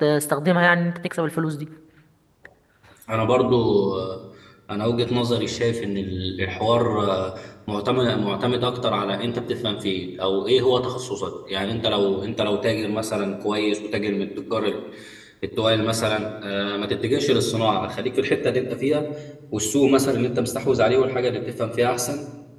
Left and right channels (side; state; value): both; identical; correlation 1.00